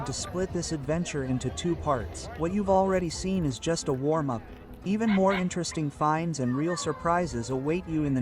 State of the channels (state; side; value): identical; both; correlation 1.00